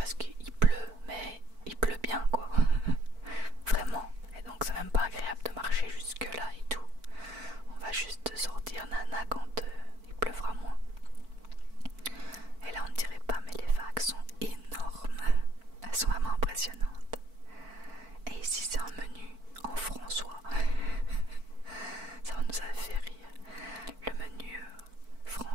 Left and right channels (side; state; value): left; late; 4.5 ms